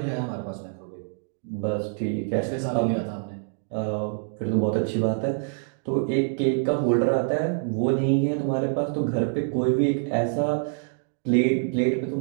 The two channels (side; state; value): left; silent; digital silence